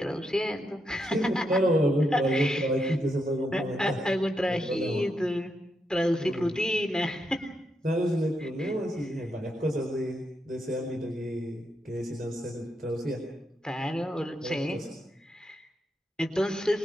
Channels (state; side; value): normal; both; correlation 0.82